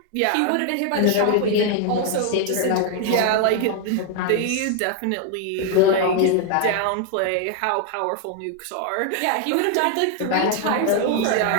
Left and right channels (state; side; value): different; both; correlation 0.00